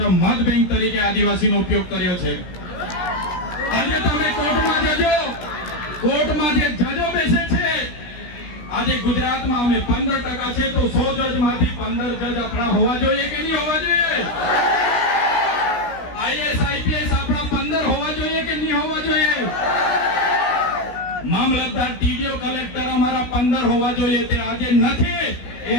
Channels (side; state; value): right; late; 17 ms